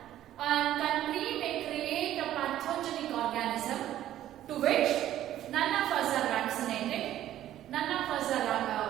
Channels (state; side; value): quieter; left; 12.6 dB